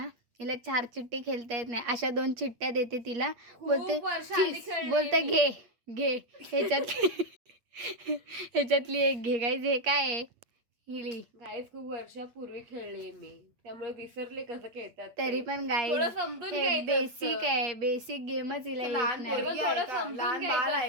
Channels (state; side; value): late; left; 8.5 ms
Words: हिला 4 चिट्टी खेळता येत नाही. अशा 2 चिट्ट्या देते तिला, बोलते घे ह्याच्यातली एक घे. गाईज हे काय आहे, हिली. गाईस खूप वर्षापूर्वी खेळले मी, त्यामुळे विसरले कसं खेळतात. तरी पण गाईज हे बेसिक आहे, बेसिक गेमच हिला येत नाही. थोडं समजून